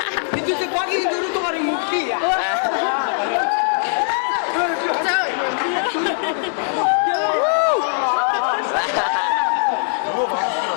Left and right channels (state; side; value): silent; right; digital silence